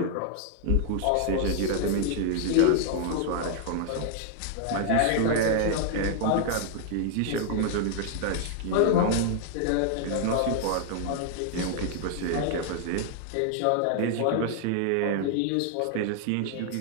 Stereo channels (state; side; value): different; both; correlation 0.00